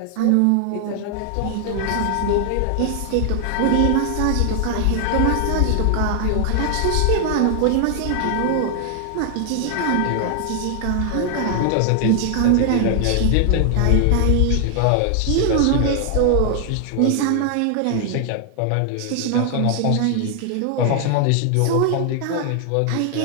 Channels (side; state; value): both; different; correlation 0.00